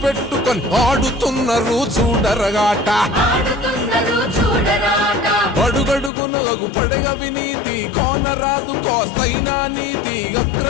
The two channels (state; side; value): drops out; right; at 6.1 s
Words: పెట్టుకొని ఆడుతున్నారు చూడరగాట. అడుగడుగునగు పడగ వినీతి కోనరాదు కోస్తైనా నీతి